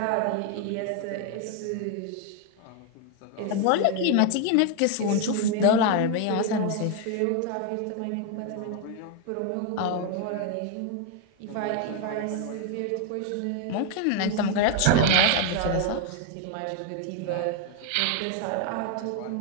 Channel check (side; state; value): both; different; correlation 0.01